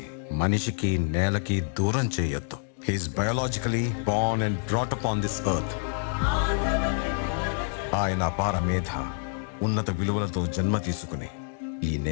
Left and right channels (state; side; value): silent; right; digital silence